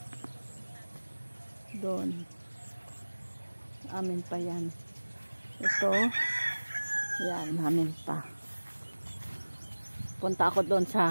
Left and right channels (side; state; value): both; inverted; correlation -1.00